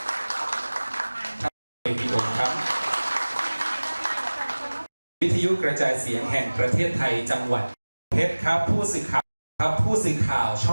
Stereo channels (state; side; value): inverted; both; correlation -1.00